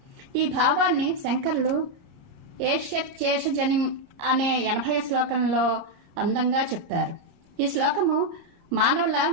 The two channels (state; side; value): late; left; 29 ms